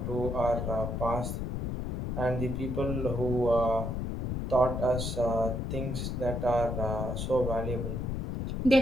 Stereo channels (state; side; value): noise; left; rumble, 3 dB below the sound